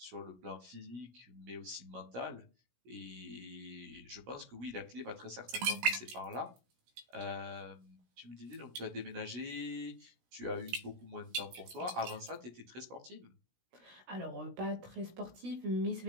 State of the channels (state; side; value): late; left; 16 ms